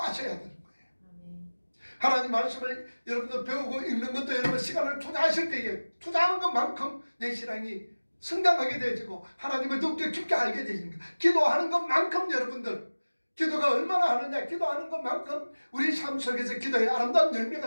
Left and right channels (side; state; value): both; inverted; correlation -1.00